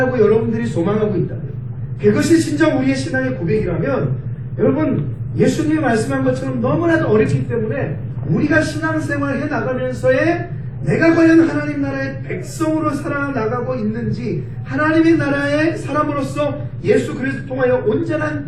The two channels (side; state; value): both; identical; correlation 1.00